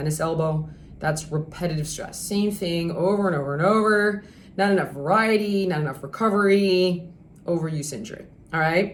elbow. That's repetitive stress. Same thing over and over and over. Not enough variety, not enough recovery, overuse injury. All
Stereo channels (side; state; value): both; identical; correlation 1.00